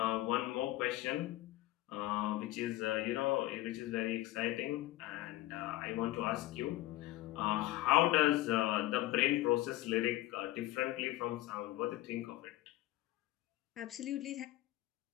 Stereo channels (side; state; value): right; quieter; 16.8 dB